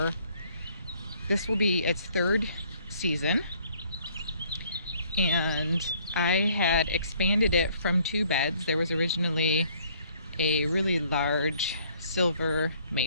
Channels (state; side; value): inverted; both; correlation -0.61